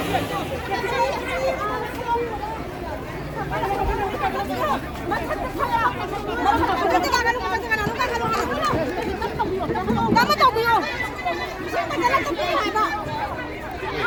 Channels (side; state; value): both; identical; correlation 1.00